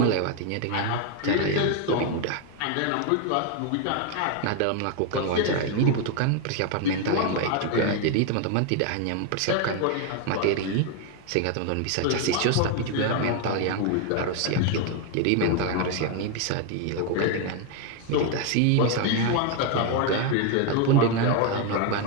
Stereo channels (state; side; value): different; both; correlation 0.01